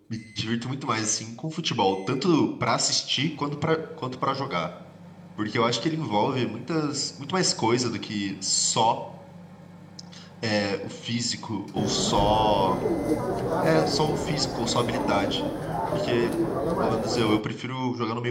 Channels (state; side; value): identical; both; correlation 1.00